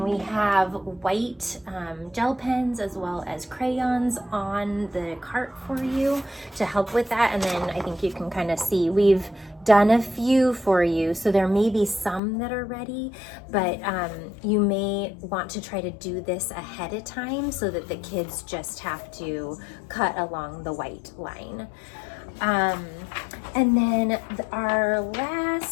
we have white gel pens as well as crayons on the cart for you to help with that. And then I think you can kind of see we've done a few for you, so there may be some that are ready, but you may want to try to do this ahead of time so that the kids just have to cut along the white line. And then our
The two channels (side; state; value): right; drops out; at 12.2 s